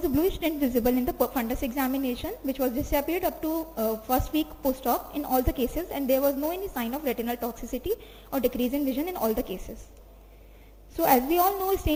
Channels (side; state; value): both; identical; correlation 1.00